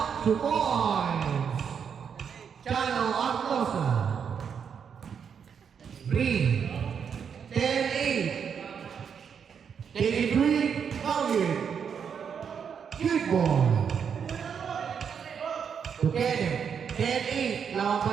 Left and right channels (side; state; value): left; quieter; 7.1 dB